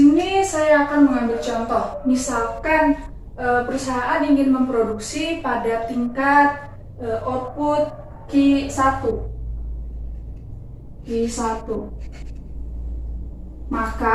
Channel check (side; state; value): both; identical; correlation 1.00